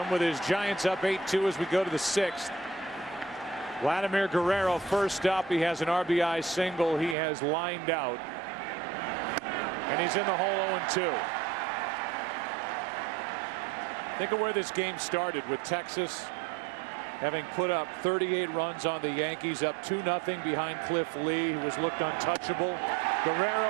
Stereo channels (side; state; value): left; drops out; at 7.2 s